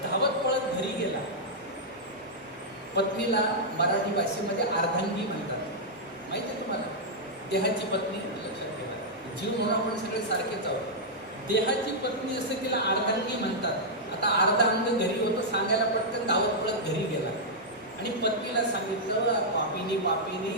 धावत पळत घरी गेला. पत्नीला मराठी भाषेमध्ये अर्धांगी म्हणतात, माहिती आहे तुम्हाला? देहाची पत्नी, लक्षात ठेवा. जीव म्हणून आपण सगळे सारखेच आहोत. देहाची पत्नी असं तिला अर्धांगी म्हणतात. आता अर्धा अंग घरी होतं, सांगायला पटकन धावत पळत घरी गेला. आणि पत्नीला सांगितलं, पापिनी पापिनी,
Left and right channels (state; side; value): normal; both; correlation -0.07